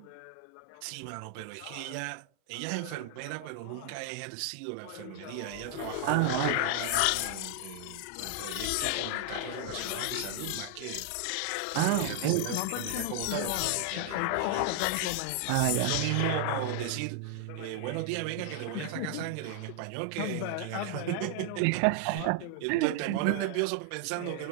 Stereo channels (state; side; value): different; both; correlation 0.00